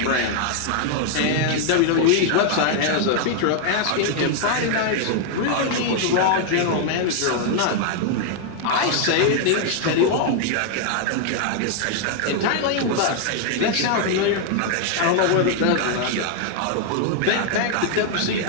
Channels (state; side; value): different; both; correlation 0.00